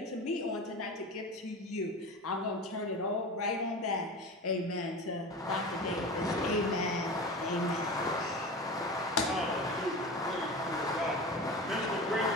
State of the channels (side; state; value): both; normal; correlation 0.30